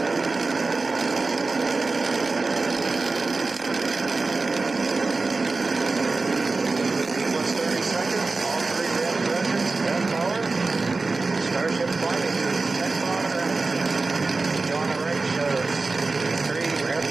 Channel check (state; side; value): quieter; left; 3.7 dB